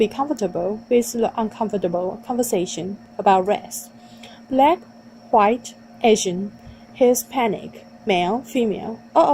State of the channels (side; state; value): both; identical; correlation 1.00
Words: comfortable with the uncomfortable conversation about race. Black, white, Asian, Hispanic, male, female, all